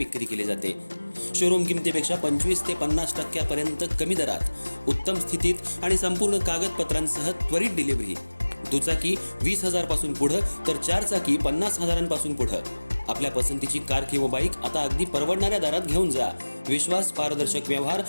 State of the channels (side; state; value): both; inverted; correlation -1.00